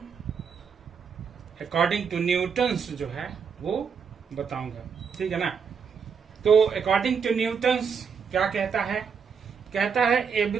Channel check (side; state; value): left; quieter; 6.3 dB